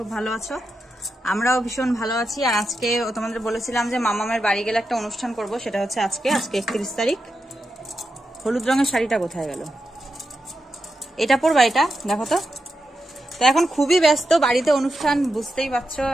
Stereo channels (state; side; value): normal; both; correlation 0.88